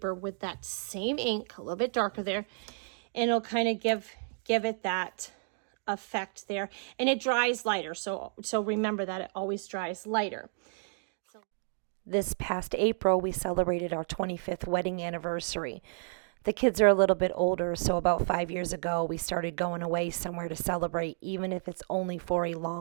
with that same ink, a little bit darker there, and it'll kind of give it that effect there. And it dries lighter, so remember that it always dries lighter. This past April, we celebrated our 25th wedding anniversary. The kids are a little bit older, so about 5 years ago, we started going away somewhere to celebrate, even if it's only for a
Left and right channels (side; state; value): left; silent; digital silence